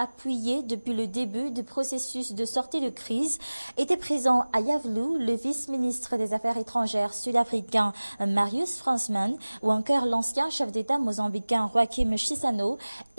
depuis le début du processus de sortie de crise était présent à Iavlou, le vice-ministre des Affaires étrangères sud-africain Marius Fransman ou encore l'ancien chef d'État mozambicain Joaquim Chissano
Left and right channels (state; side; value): inverted; both; correlation -1.00